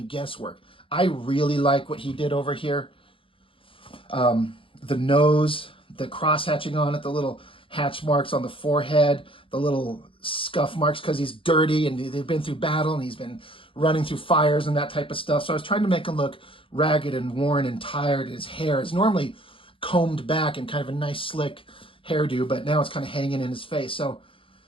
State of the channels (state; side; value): late; right; 0.26 ms